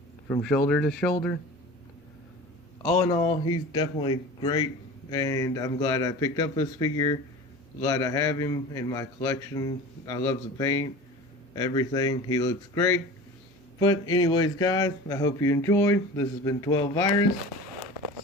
from shoulder to shoulder. All in all, he's definitely great, and I'm glad I picked up this figure. Glad I have him in my collection. I love the paint, everything. He looks great. But anyways, guys, I hope you enjoyed. This has been 12 Virus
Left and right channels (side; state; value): both; normal; correlation 0.36